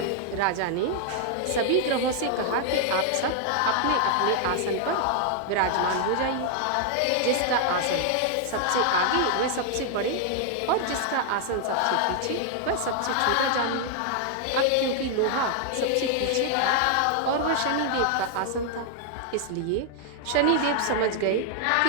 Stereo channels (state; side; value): different; both; correlation 0.00